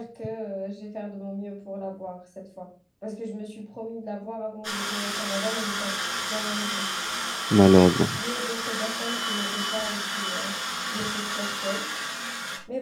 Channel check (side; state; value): both; identical; correlation 1.00